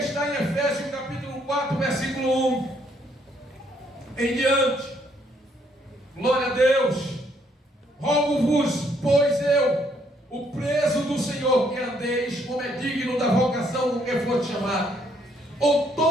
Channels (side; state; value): both; normal; correlation 0.69